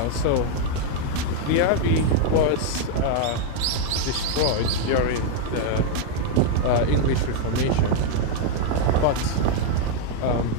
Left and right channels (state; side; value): different; both; correlation 0.00